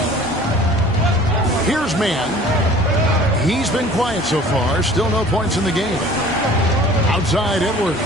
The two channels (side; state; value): both; normal; correlation 0.48